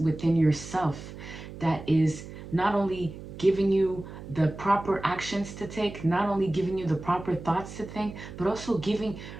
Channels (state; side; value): noise; right; hum, 13 dB below the sound